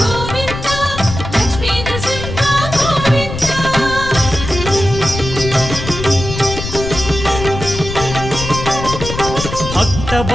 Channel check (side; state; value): left; noise; rumble, 7 dB below the sound